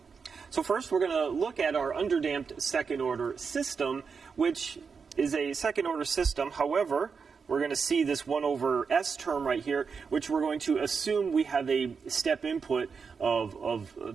So first, we're going to look at our underdamped second-order system, which is a second-order system. However, we're going to see this 1 over S term right here, which we're going to assume we have a step input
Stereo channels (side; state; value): left; quieter; 5.6 dB